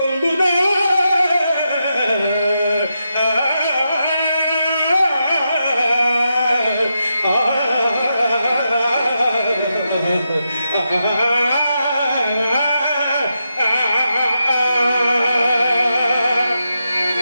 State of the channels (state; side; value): inverted; both; correlation -0.86